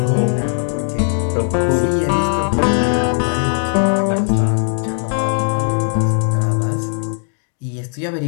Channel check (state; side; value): silent; right; 59 dB below the other